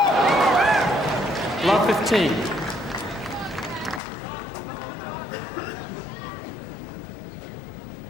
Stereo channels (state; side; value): drops out; right; at 4.0 s